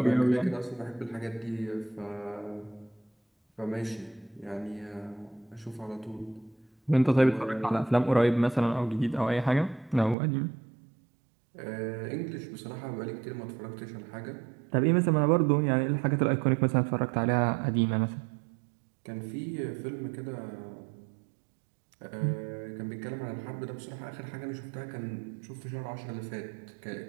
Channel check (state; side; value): drops out; left; at 10.2 s